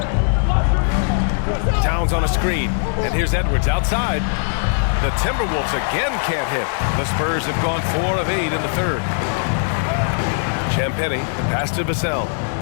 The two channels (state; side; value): silent; right; digital silence